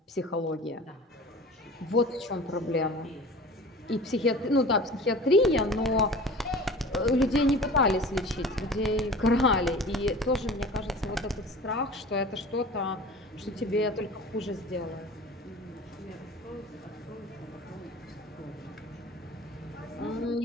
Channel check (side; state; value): both; normal; correlation 0.40